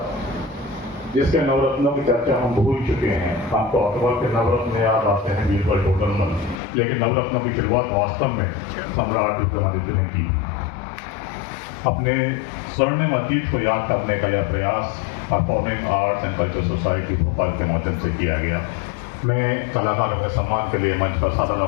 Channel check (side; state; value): right; drops out; at 6.6 s